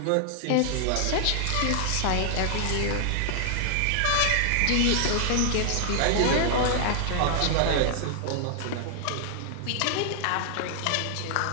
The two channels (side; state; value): both; different; correlation -0.01